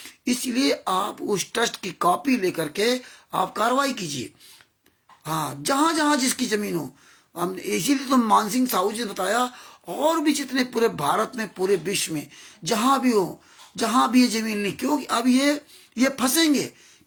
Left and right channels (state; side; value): identical; both; correlation 1.00